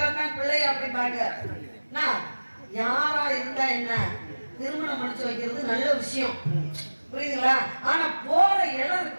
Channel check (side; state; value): both; inverted; correlation -1.00